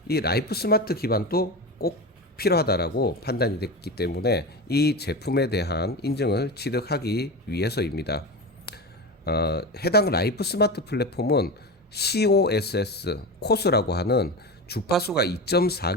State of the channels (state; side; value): normal; both; correlation 0.24